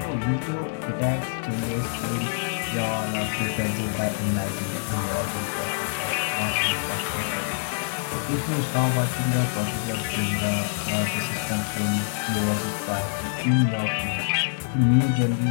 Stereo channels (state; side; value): silent; right; 59 dB below the other